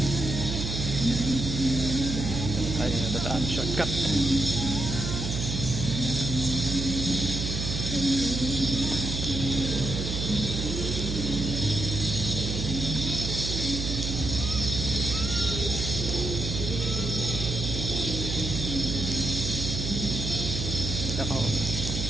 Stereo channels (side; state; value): right; noise; hum, 3 dB below the sound